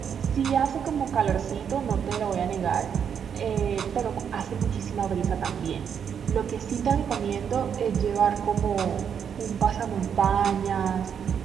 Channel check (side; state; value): left; quieter; 7.7 dB